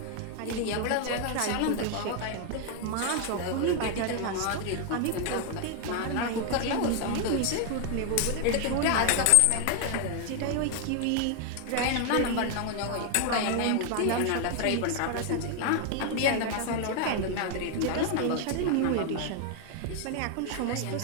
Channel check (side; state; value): both; different; correlation 0.00